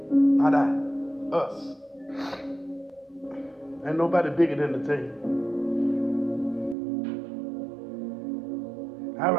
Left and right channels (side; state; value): left; drops out; at 6.8 s